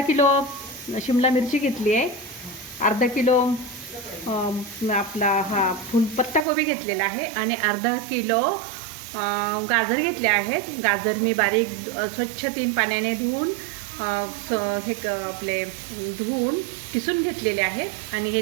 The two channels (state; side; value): drops out; left; at 6.5 s